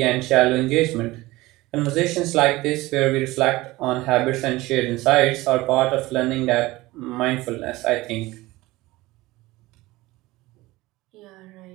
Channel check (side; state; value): left; quieter; 19.5 dB